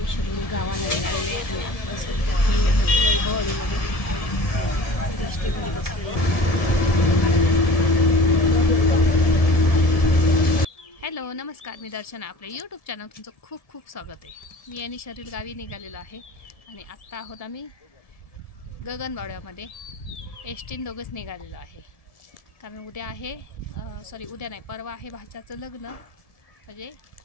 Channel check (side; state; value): right; late; 1.7 ms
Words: शरीर गावाला निघालेले आणि आता सध्या हॅलो नमस्कार, मी दर्शना. आपल्या यूट्यूब चॅनल तुमचं खूप खूप स्वागत आहे. मी आणि शरीर गावी निघालेलो आहे आणि आत्ता आहोत आम्ही गगनबावड्यामध्ये. एसटीन दोघंच निघालेलो आहे कारण उद्या आहे उद्या नाही, परवा आहे भाच्याचं लग्न, म्हणजे